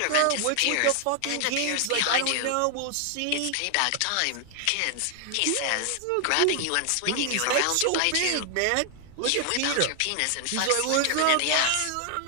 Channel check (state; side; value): different; both; correlation 0.00